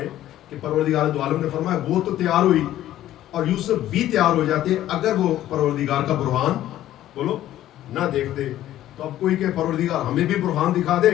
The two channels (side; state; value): right; quieter; 13.2 dB